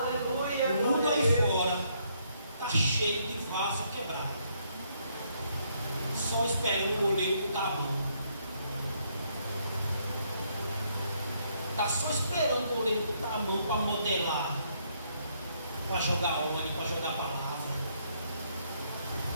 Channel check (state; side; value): inverted; both; correlation -0.72